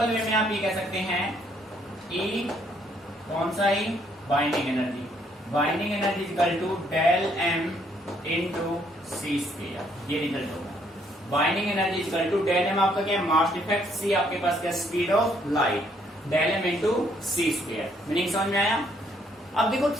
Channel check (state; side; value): normal; both; correlation 0.68